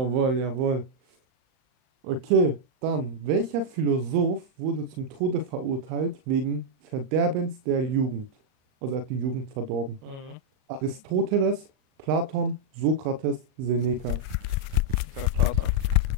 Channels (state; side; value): late; left; 39 ms